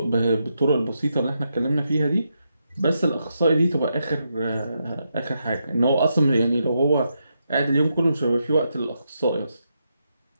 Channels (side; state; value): both; inverted; correlation -0.83